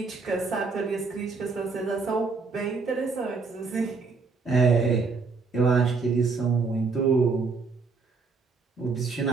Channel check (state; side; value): quieter; left; 4.5 dB